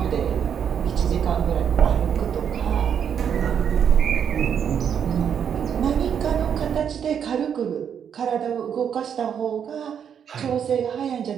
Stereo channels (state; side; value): quieter; left; 8.1 dB